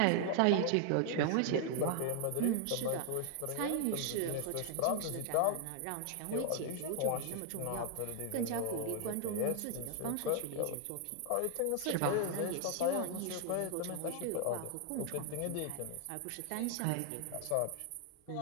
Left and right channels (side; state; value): both; different; correlation 0.00